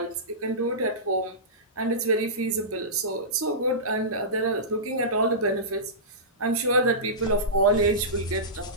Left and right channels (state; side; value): normal; both; correlation -0.18